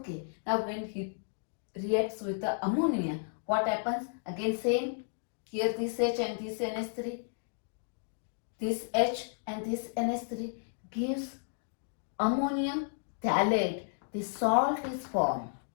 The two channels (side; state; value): right; silent; digital silence